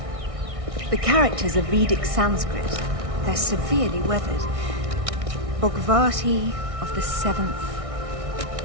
The characters are Vedic Sanskrit. They're severely weathered. Bhagavati of the 7th.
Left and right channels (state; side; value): late; left; 1.6 ms